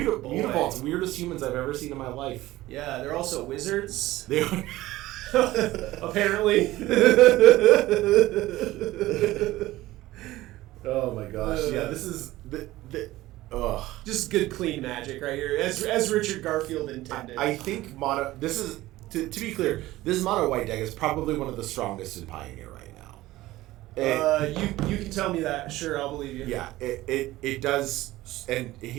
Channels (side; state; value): left; quieter; 17.0 dB